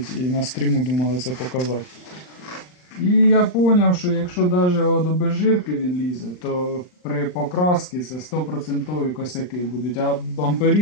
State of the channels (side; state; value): right; late; 39 ms